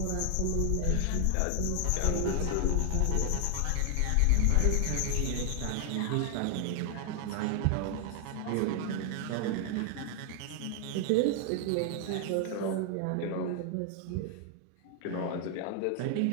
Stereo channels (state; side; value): different; both; correlation 0.00